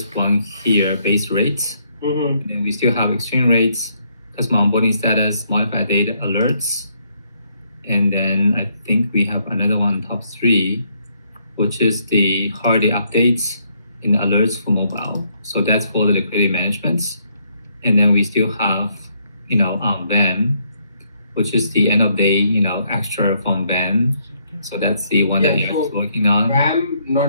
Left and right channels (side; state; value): both; inverted; correlation -0.72